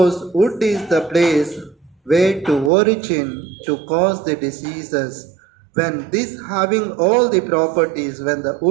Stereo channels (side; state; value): left; drops out; at 2.7 s